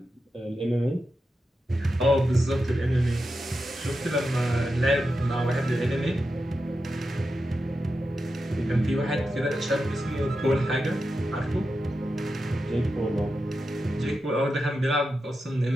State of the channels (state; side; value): normal; both; correlation 0.89